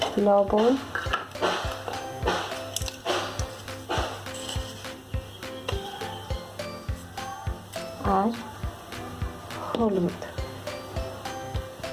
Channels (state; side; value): identical; both; correlation 1.00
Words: লবণ, আর হলুদ